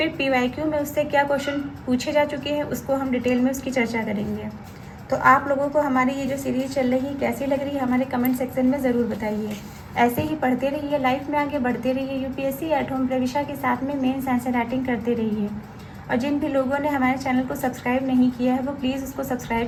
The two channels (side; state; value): both; identical; correlation 1.00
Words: PYQ में उससे क्या क्वेश्चन पूछे जा चुके हैं उसको हम डिटेल में उसकी चर्चा करेंगे। तो आप लोगों को हमारी ये जो सीरीज़ चल रही है कैसी लग रही है हमारे कमेंट सेक्शन में ज़रूर बताइए। ऐसे ही पढ़ते रहिए, लाइफ में आगे बढ़ते रहिए, UPSC एट होम प्रविशा के साथ में मेंस आंसर राइटिंग करते रहिए। और जिन भी लोगों ने हमारे चैनल को सब्सक्राइब नहीं किया है वो प्लीज़ उसको